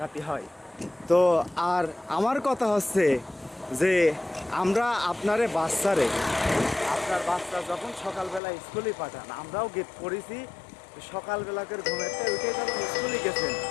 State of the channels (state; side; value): drops out; right; at 8.4 s